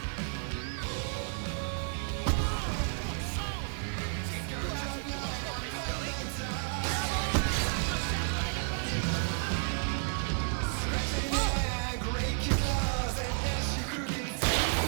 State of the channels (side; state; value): left; silent; 56 dB below the other